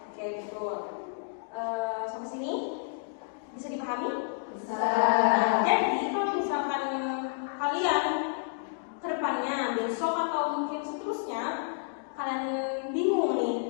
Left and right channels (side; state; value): right; silent; digital silence